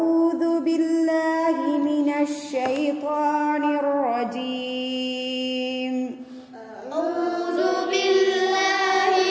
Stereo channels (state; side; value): identical; both; correlation 1.00